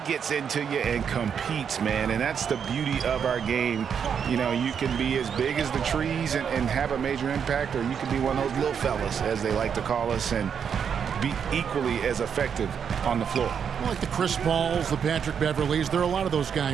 gets into you and competes, man. And that's the beauty of our game. You know, you can be as big as the trees and have a major impact, or you can be one of those little fellas, as they like to call us, and be equally as effective on the floor. Like the Chris Pauls, the Patrick Beverleys, there are a lot of those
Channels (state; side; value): quieter; left; 7.4 dB